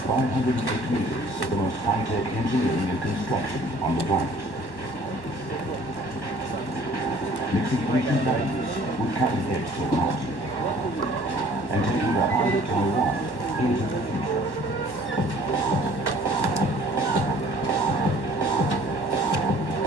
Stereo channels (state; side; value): late; right; 1.1 ms